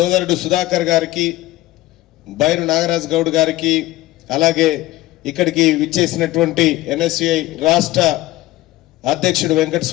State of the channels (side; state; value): right; quieter; 17.0 dB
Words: సుధాకర్ గారికి, బైరు నాగరాజ్ గౌడ్ గారికి, అలాగే ఇక్కడికి విచ్చేసినటువంటి ఎన్ఎస్యుఐ రాష్ట్ర అధ్యక్షుడు